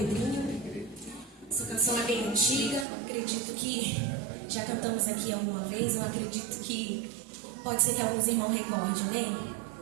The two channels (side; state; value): left; drops out; at 2.9 s